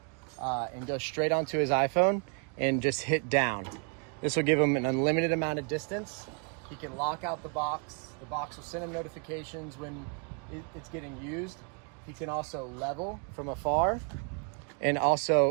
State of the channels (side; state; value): left; quieter; 38.5 dB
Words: and go straight onto his iPhone and just hit down. This will give him an unlimited amount of distance. He can lock out the box. The box will send him notifications when it's getting used. He can also level from afar and